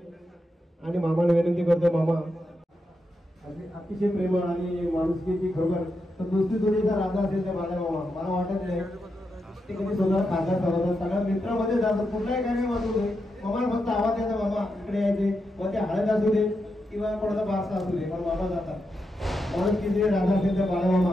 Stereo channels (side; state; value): both; normal; correlation 0.86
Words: आणि मामाला विनंती करतोय मामा अतिशय प्रेमळ आणि माणुसकीची खरोखर तर दुसरी जोडीचा राजा असेल त्या माझ्या मामा मला वाटत नाही ते कधी स्वतः खासदार चालवतात सगळ्या मित्रामध्ये जातात कुठलाही कार्यक्रम असू दे मामाला फक्त आवाज द्यायचा मामा इकडे यायचे मग ते हळद असू दे किंवा कोणाचा बारसा असू दे पण मामा जातात माणुसकीचे राजा असेल त्या बाळा